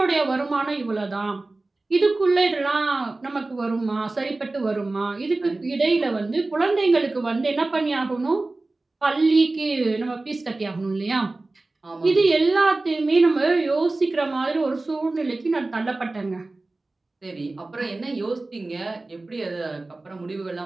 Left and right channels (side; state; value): left; quieter; 3.1 dB